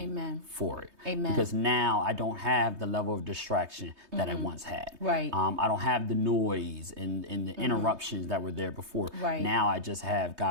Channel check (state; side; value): late; left; 3.2 ms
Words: for it. Amen. Because now I don't have the level of distraction that I once had. Right. I don't have the noise and the interruptions that were there before. Right. Now I just have